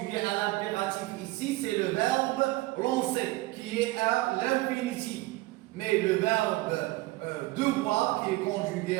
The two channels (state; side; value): quieter; left; 19.8 dB